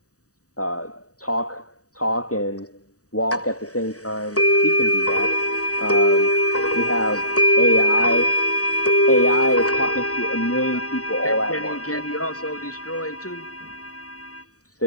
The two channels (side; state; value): right; late; 0.66 ms